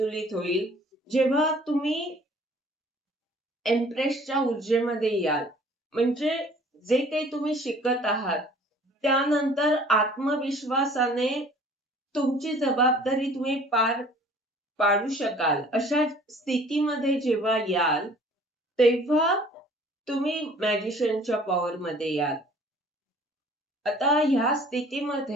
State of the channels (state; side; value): normal; both; correlation 0.52